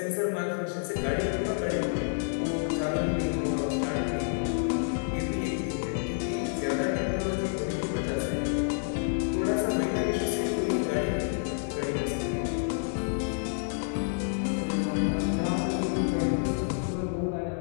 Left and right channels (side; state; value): right; silent; 59 dB below the other